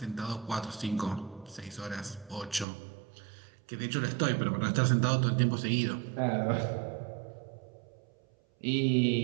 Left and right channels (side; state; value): left; drops out; at 2.7 s